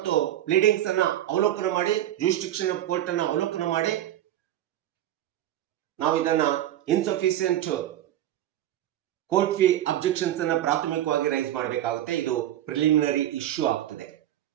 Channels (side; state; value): left; quieter; 12.5 dB